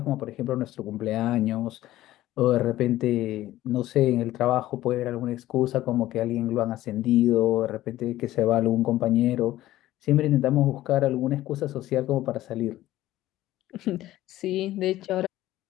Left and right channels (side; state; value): right; quieter; 15.0 dB